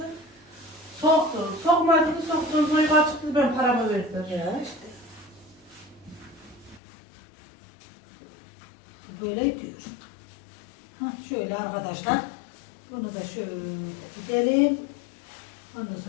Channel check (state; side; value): drops out; right; at 6.8 s